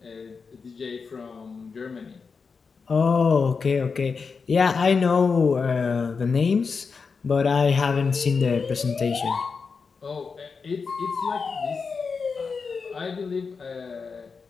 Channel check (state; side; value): quieter; right; 5.1 dB